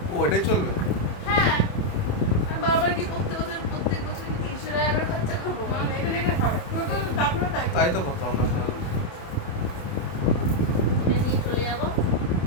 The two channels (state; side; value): late; right; 28 ms